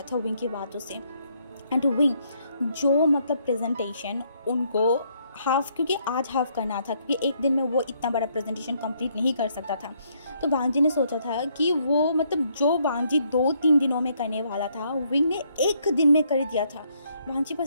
था विंग की बातों से। एंड विंग जो मतलब प्रेजेंटेशन उनको हाफ, क्योंकि आज हाफ करना था, क्योंकि एक दिन में वो इतना बड़ा प्रेजेंटेशन कंप्लीट नहीं कर सकता था, तो वांग जी ने सोचा था कि वो मतलब जो वांग जी 2-3 दिनों में करने वाला था, विंग ने 1 दिन में कर दिया था। वांग जी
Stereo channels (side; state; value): both; inverted; correlation -0.71